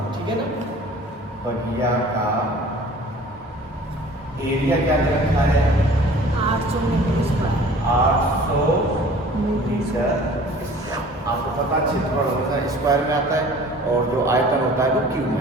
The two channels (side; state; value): both; normal; correlation 0.47